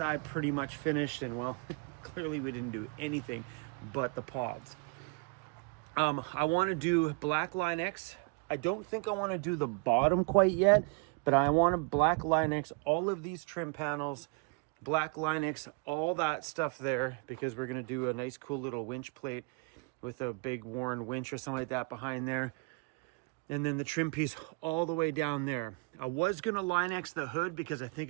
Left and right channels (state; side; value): quieter; left; 31.3 dB